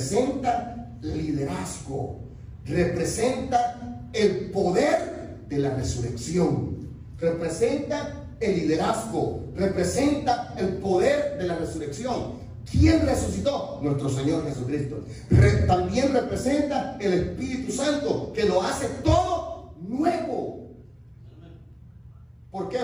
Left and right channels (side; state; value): both; identical; correlation 1.00